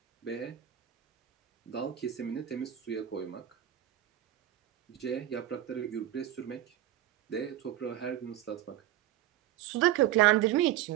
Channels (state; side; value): quieter; left; 12.3 dB